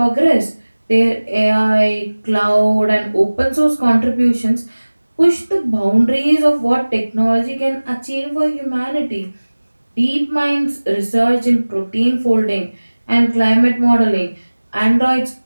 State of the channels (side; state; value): both; inverted; correlation -1.00